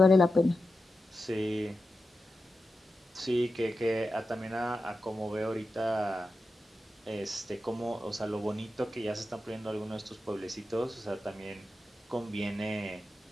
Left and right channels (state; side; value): normal; both; correlation 0.91